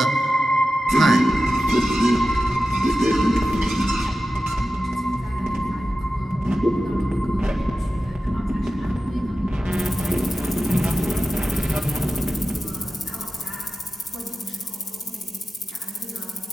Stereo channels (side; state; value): both; normal; correlation 0.93